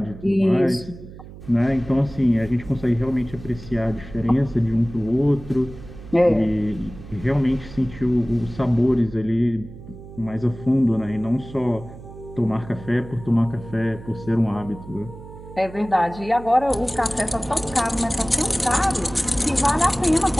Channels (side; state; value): right; noise; hum, 16 dB below the sound